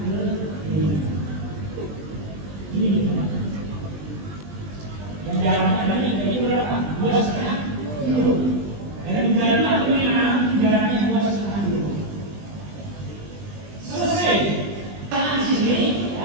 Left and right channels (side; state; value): left; late; 20 ms